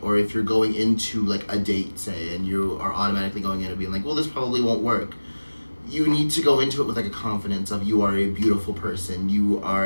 or if you're going into like a date, say, and you are automatically going in and being like, well, this probably won't work. You need to go into it with like a confidence of you are a beautiful person. You are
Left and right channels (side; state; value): both; inverted; correlation -1.00